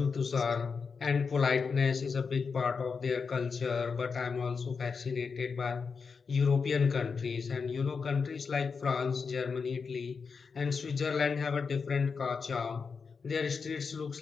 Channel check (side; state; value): right; quieter; 5.3 dB